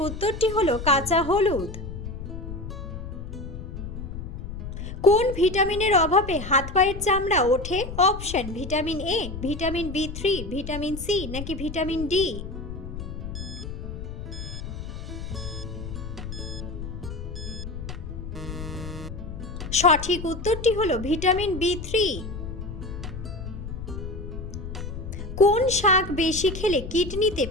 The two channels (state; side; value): noise; left; rumble, 8 dB below the sound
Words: উত্তরটি হলো কাঁচা হলুদ। কোন ভিটামিনের অভাবে হাত পায়ের চামড়া ওঠে? অপশন ভিটামিন এ, ভিটামিন বি3, ভিটামিন সি নাকি ভিটামিন ডি। সঠিক উত্তরটি হলো ভিটামিন বি3। কোন শাক বেশি খেলে কিডনিতে